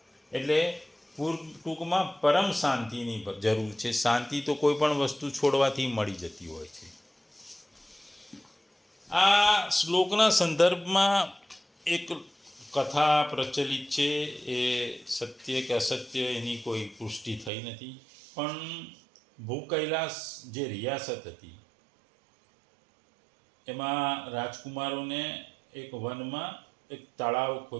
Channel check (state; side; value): drops out; left; at 17.5 s